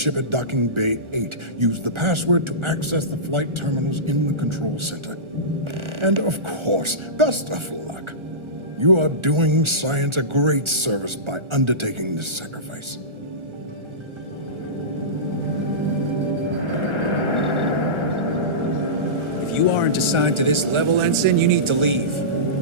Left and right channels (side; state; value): left; late; 1.4 ms